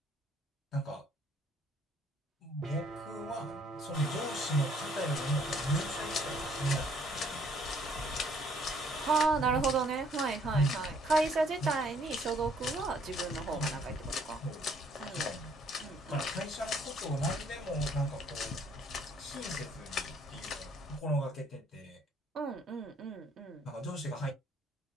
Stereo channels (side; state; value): both; normal; correlation 0.63